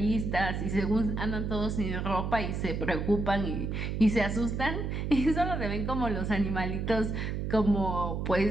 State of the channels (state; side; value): noise; right; hum, 2 dB below the sound